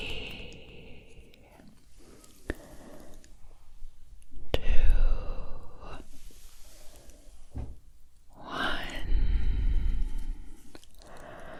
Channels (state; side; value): identical; both; correlation 1.00